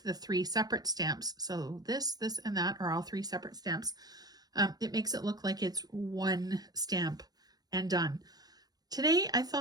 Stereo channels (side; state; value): left; late; 0.19 ms